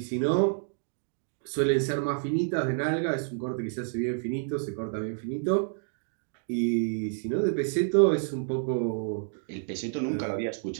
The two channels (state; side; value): silent; left; digital silence